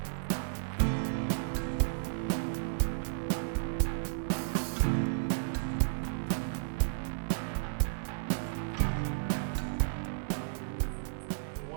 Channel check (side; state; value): left; silent; digital silence